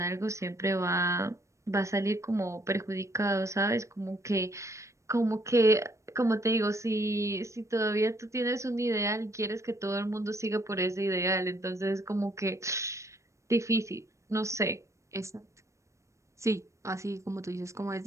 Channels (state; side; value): late; left; 0.15 ms